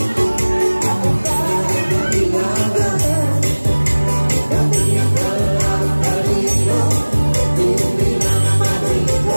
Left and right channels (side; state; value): both; inverted; correlation -1.00